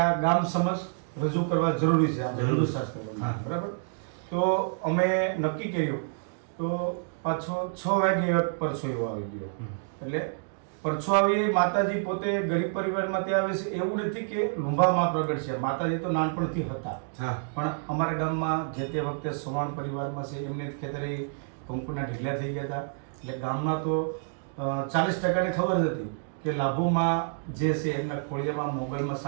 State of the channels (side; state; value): left; silent; digital silence